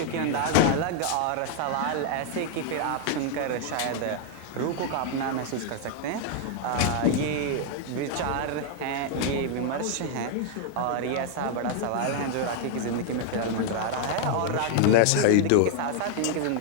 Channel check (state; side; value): different; both; correlation 0.00